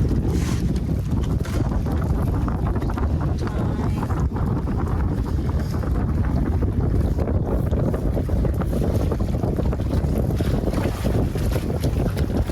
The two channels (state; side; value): identical; both; correlation 1.00